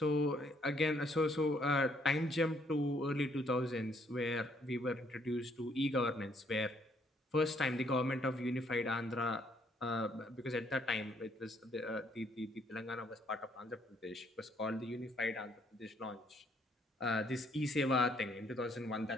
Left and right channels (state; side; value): normal; both; correlation 0.68